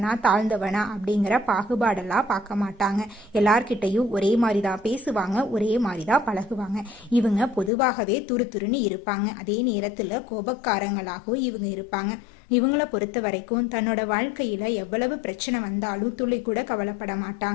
தாழ்ந்தவனா அப்படிங்கிற பாகுபாடெல்லாம் பார்க்க மாட்டாங்க. எல்லார்கிட்டையும் ஒரே மாதிரி தான் பேசுவாங்க, ஒரே மாதிரி தான் பழகுவாங்க. இவங்க பொதுவாகவே துருதுருன்னு இருப்பாங்க. அதே நேரத்தில் கோபக்காரங்களாகவும் இவங்க இருப்பாங்க. இவங்கள பொறுத்த வரைக்கும் தன்னோட வாழ்க்கையில எவ்வளவு பிரச்சனை வந்தாலும் துளி கூட கவலைப்பட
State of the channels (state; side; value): drops out; right; at 7.7 s